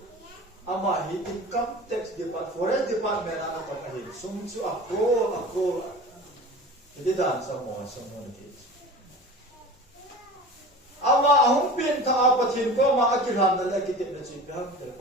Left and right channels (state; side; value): normal; both; correlation 0.37